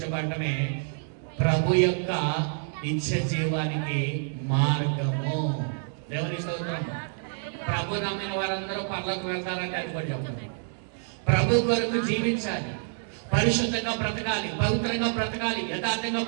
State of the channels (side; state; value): left; silent; 59 dB below the other